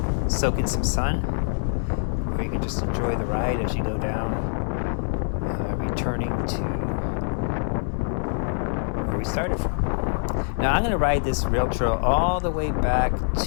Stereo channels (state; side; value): silent; right; digital silence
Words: soak in some sun, or you can just enjoy the ride as you go down, returning to where we started from. Now I'm going to ride this rail trail all the way back